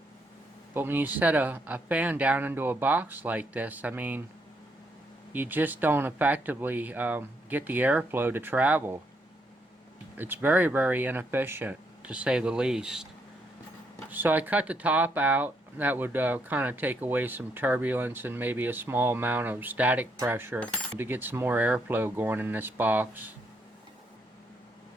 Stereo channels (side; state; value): both; normal; correlation 0.75